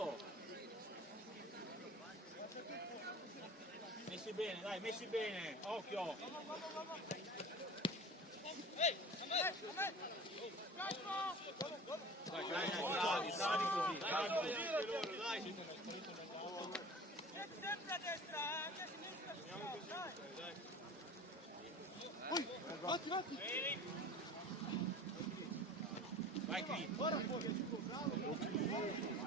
Messi bene, dai, messi bene, occhio. Dai, dai, bravi, bravi così, bravi così. Sempre a destra, anche a sinistra. Vatti, vatti. Vai qui.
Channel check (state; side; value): normal; both; correlation 0.39